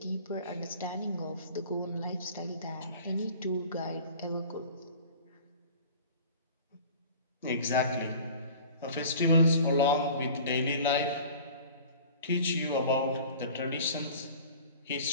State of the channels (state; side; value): inverted; both; correlation -0.43